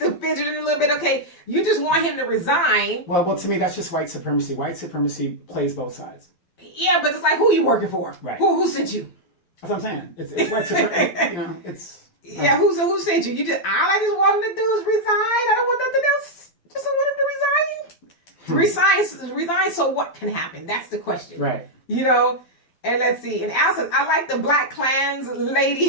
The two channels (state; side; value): late; right; 12 ms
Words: the fidgeting a little bit? Okay, you just want him to resign. Well, to me, that's just white supremacy. White supremacy plays both sides. Yeah, but it's like, who are you working for? Right. Who sent you? That's what I'm saying. It's white supremacy. It's. Yeah, who sent you? All I just want him to do is resign. I don't want nothing else. Just I want him to resign. Resign. So what can happen? That's the question. Right. And let's see. And Al says, I like the Black Klan's